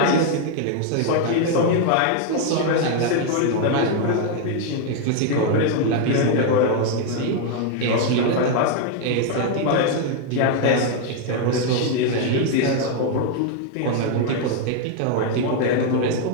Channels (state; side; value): different; both; correlation 0.00